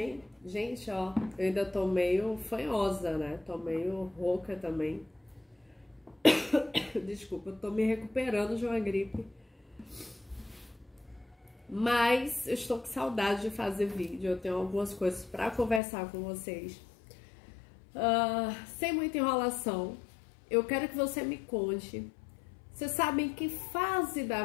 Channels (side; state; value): right; drops out; at 15.8 s